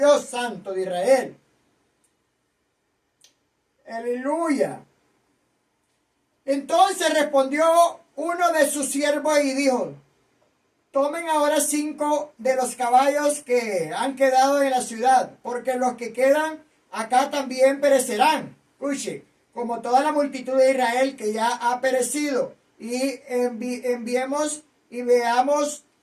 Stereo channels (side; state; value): both; identical; correlation 1.00